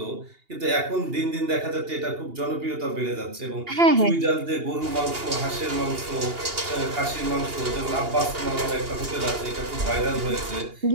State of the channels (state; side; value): late; left; 2.8 ms